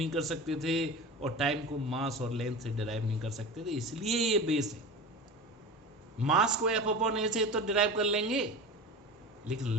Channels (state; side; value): normal; both; correlation 0.30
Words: कर सकते थे, और टाइम को मास और लेंथ से डिराइव नहीं कर सकते थे, इसलिए ये बेस है। मास को एफ अपॉन ए से तो डिराइव कर लेंगे, लेकिन